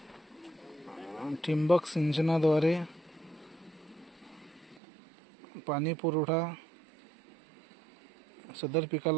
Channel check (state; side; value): drops out; left; at 4.8 s